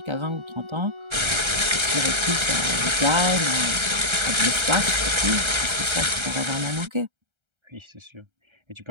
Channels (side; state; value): left; late; 1.3 ms